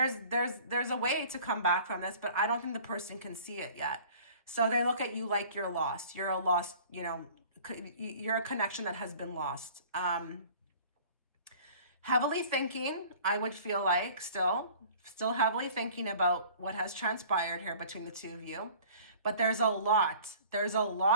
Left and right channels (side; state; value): both; inverted; correlation -0.48